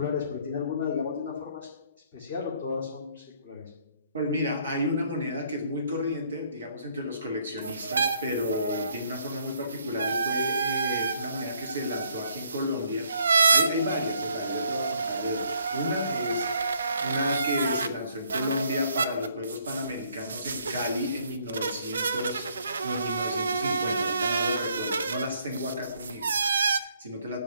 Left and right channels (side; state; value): both; inverted; correlation -0.67